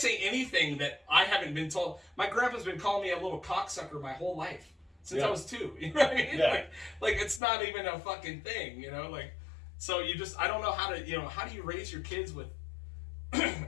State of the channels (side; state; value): right; drops out; at 7.4 s